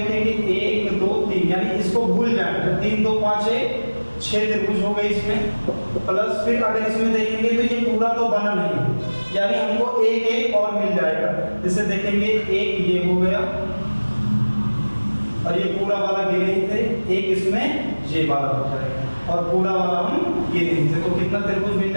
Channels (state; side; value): inverted; both; correlation -1.00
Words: 1 2 3, यानी इसको भूल जाए तो 3 2 5 6 त्रिभुज हो गए इसमें। प्लस फिर अगर इसमें देखेंगे तो ये पूरा तो बना नहीं, यानी हमको एक एक और मिल जाएगा। जैसे देखेंगे एक ये हो गया और ये पूरा वाला गिने ही थे, एक इसमें ये वाला हो जाएगा और पूरा वाला हम गिने थे। तो कितना त्रिभुज मिल